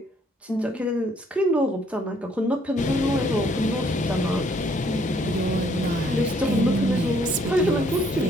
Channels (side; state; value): both; normal; correlation 0.65